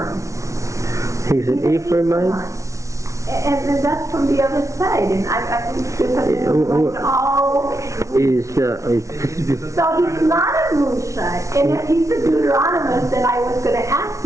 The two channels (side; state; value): left; late; 0.14 ms